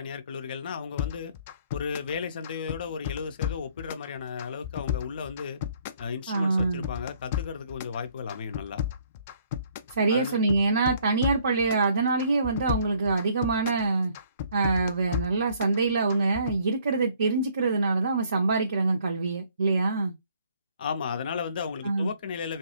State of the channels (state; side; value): inverted; both; correlation -0.63